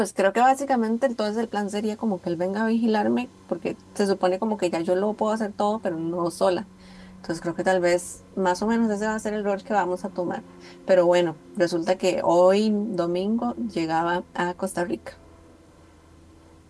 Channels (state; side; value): identical; both; correlation 1.00